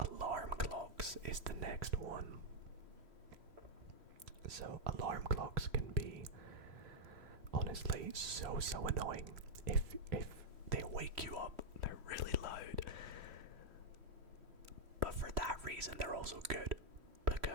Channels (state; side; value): late; left; 3.1 ms